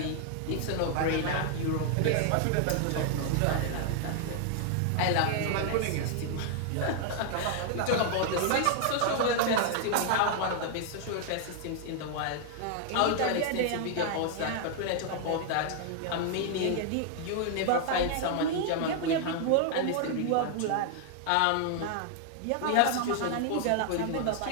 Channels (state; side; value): different; both; correlation 0.00